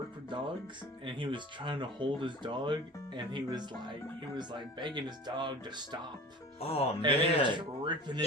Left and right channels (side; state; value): both; normal; correlation 0.39